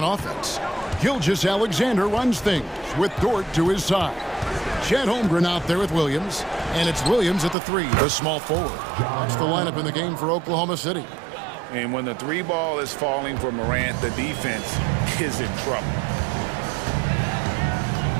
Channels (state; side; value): drops out; left; at 7.6 s